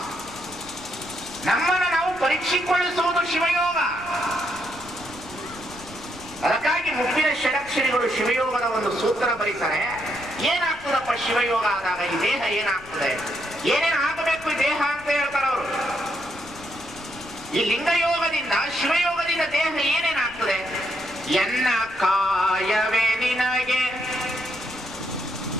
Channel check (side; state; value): left; noise; rumble, 21 dB below the sound